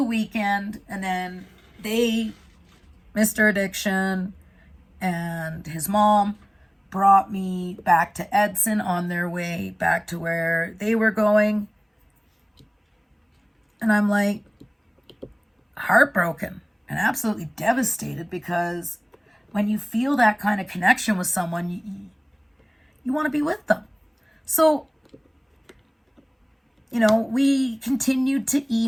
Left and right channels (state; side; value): identical; both; correlation 1.00